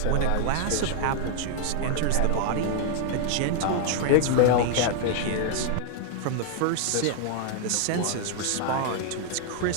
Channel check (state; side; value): different; both; correlation 0.00